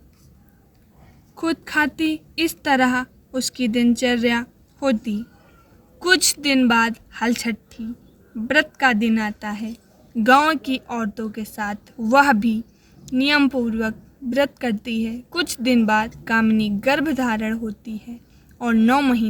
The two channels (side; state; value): both; identical; correlation 1.00